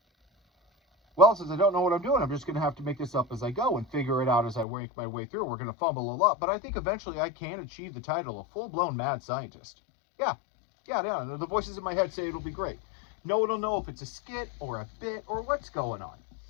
Well, since I don't know what I'm doing, I'm just going to have to make this up as I go and figure it out as I work my way through. We're going to fumble a lot, but I think eventually I can achieve the title of full-blown mad scientist. Yeah. The voices in my head say it'll be great. No one will know if it's a skit or a bit or what's going on.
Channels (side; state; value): right; drops out; at 4.7 s